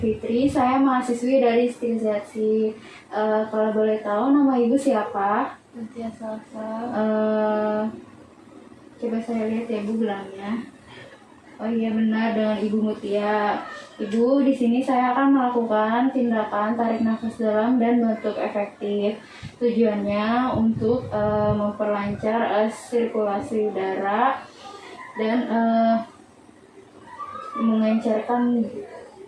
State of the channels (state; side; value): identical; both; correlation 1.00